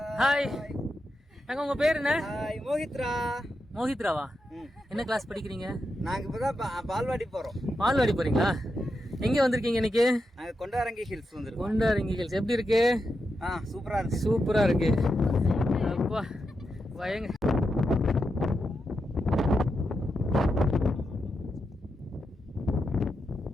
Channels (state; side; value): normal; both; correlation 0.86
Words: ஹாய் அக்கா. உங்க பேர் என்ன? மோஹித்ரா. மோஹித்ராவா? என்ன கிளாஸ் படிக்கிறீங்க? நாங்க இப்பதான் பால்வாடி போறோம். பால்வாடி போறீங்களா? எங்க வந்திருக்கீங்க இன்னைக்கு? நாங்க கொண்டாரங்கி ஹில்ஸ் வந்திருக்கோம். கொண்டாரங்கி ஹில்ஸ் எப்படி இருக்கு? சூப்பரா இருக்கு. சூப்பரா இருக்கு. அப்பா பயங்க.